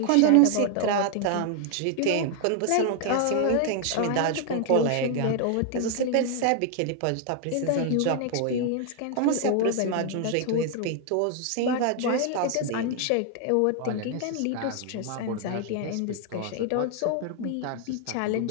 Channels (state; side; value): different; both; correlation 0.00